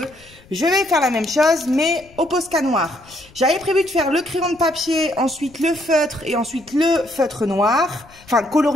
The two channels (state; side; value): noise; left; rumble, 25 dB below the sound